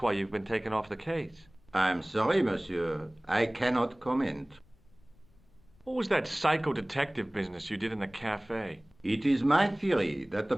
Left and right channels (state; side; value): noise; left; rumble, 30 dB below the sound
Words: why you've been taken off the case. I'm sorry, monsieur. I cannot comment. What was that psycho-detective business you did in the cafe? It is my theory that the